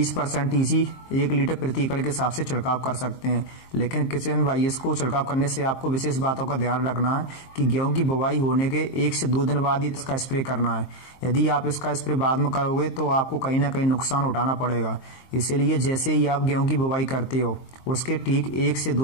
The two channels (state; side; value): late; right; 23 ms